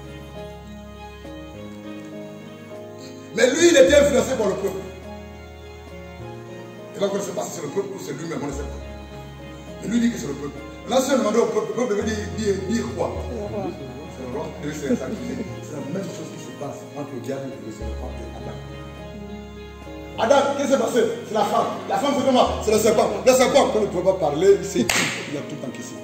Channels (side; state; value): both; identical; correlation 1.00